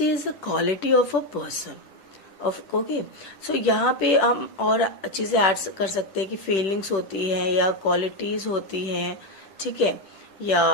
is a quality of a person of okay. So यहाँ पे हम और चीज़ें ऐड कर सकते हैं कि फीलिंग्स होती हैं या क्वालिटीज़ होती हैं, ठीक है, या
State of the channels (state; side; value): late; right; 10 ms